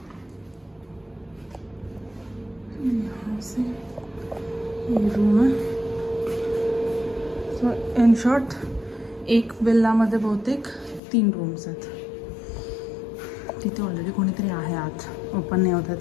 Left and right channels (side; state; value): right; drops out; at 11.0 s